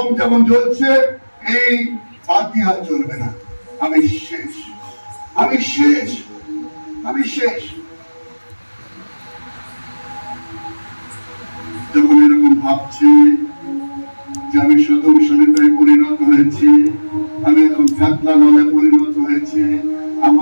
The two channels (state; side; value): inverted; both; correlation -1.00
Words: যেমন জ্বলছে, এই বাতি আর জ্বলবে না। আমি শেষ, আমি শেষ, আমি শেষ। যখন এরকম ভাবছি যে আমি সদম সলিতায় পরিণত হয়েছি, আমি এখন কাতলা নলে পরিণত হয়েছি,